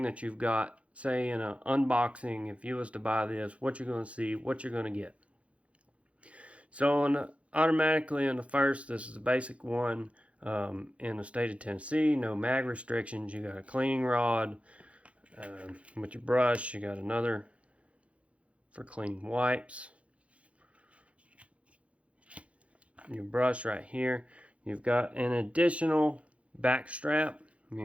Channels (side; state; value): left; late; 0.063 ms